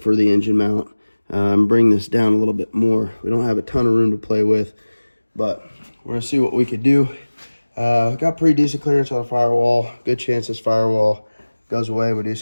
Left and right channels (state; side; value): inverted; both; correlation -1.00